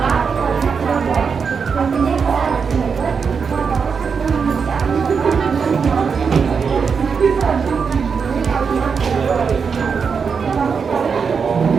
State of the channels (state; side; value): quieter; left; 5.9 dB